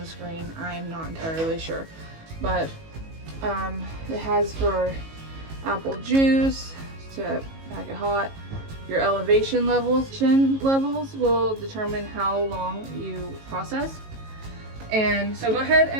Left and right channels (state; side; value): late; left; 18 ms